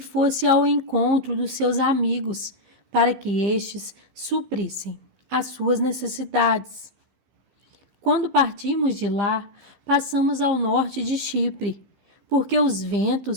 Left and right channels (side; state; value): left; late; 15 ms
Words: ao encontro dos seus amigos, para que estes suprissem as suas necessidades. Quando partimos de lá, passamos ao norte de Chipre, porque os